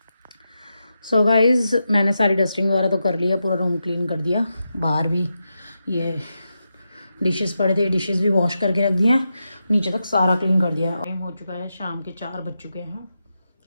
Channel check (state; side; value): inverted; both; correlation -0.88